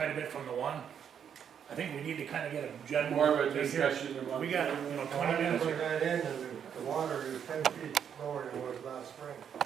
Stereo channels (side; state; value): left; quieter; 8.2 dB